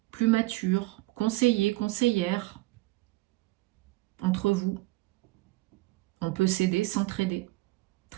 plus mature, conseiller, conseillère entre vous. On peut s'aider, s'entraider.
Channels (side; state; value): left; quieter; 20.0 dB